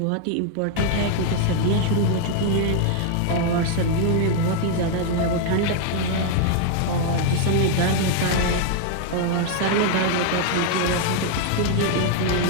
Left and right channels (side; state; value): both; different; correlation 0.00